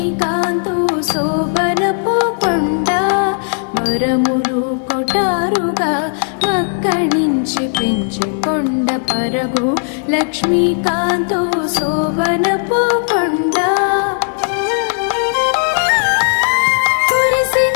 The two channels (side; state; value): right; silent; digital silence